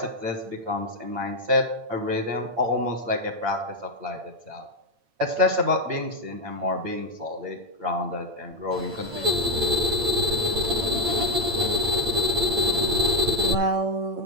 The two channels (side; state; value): left; late; 8.8 ms